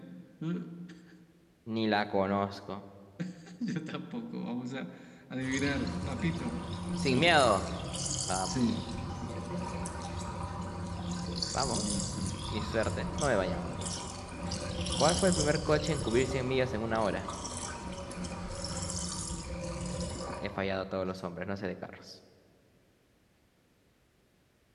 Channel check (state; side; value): identical; both; correlation 1.00